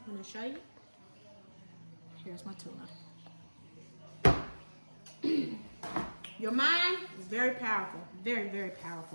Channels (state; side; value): inverted; both; correlation -1.00